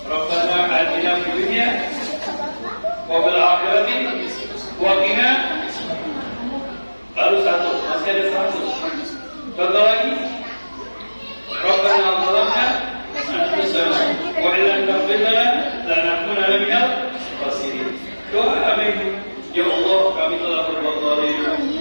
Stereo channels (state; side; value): inverted; both; correlation -1.00